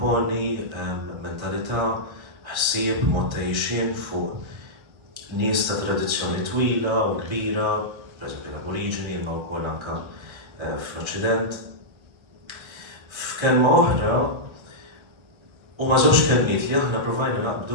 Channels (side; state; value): left; late; 1.3 ms